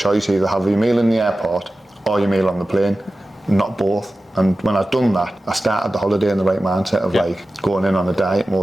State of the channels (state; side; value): normal; both; correlation 0.95